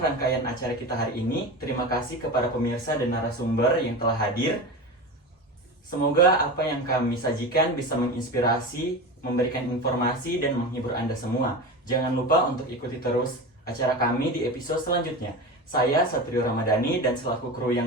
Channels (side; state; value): both; normal; correlation 0.26